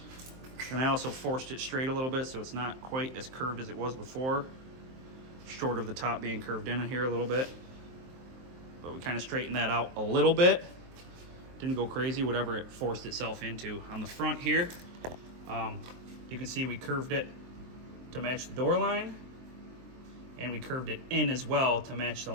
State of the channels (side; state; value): left; late; 23 ms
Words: And I also forced it straight a little bit so it's not quite as curved as it was before. Short of the top being curved in here a little bit. But we kind of straightened that out a little bit. Didn't go crazy, whatever it forced itself into. On the front here, you can see we curved it to match the door line. And we curved it in as well to match the